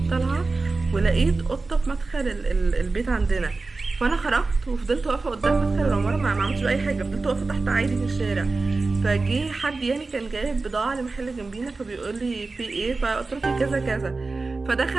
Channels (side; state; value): left; quieter; 3.7 dB